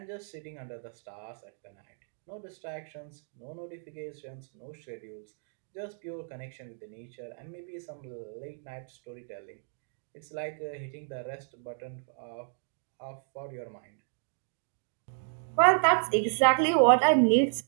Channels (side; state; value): left; silent; digital silence